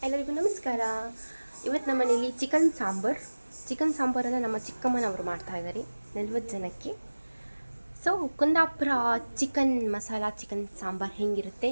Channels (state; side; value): inverted; both; correlation -1.00